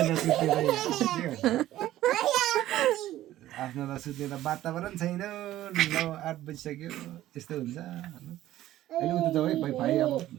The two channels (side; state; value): left; quieter; 14.1 dB